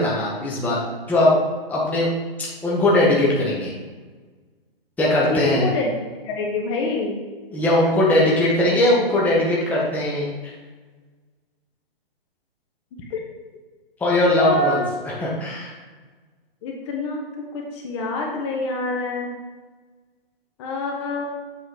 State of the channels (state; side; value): normal; both; correlation 0.29